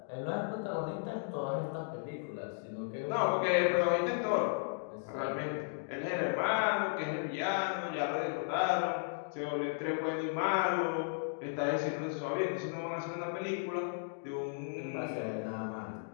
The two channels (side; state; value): right; silent; digital silence